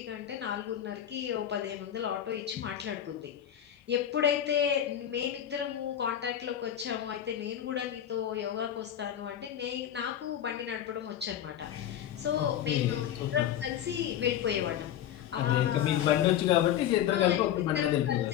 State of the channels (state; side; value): quieter; right; 10.6 dB